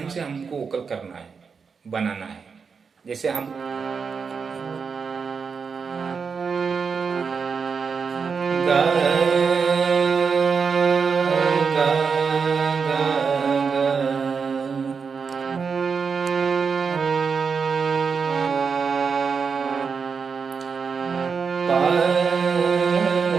से हमको वोकल करना है, बनाना है। जैसे हम गा गा गा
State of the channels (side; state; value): left; quieter; 5.7 dB